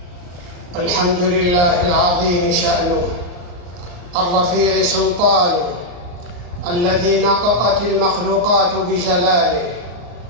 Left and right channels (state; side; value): late; left; 34 ms